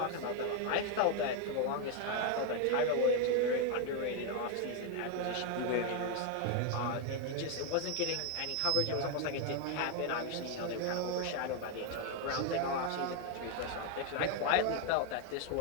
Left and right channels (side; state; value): both; different; correlation 0.01